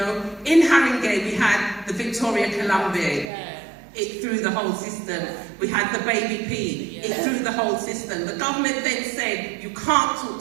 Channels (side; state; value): left; drops out; at 3.2 s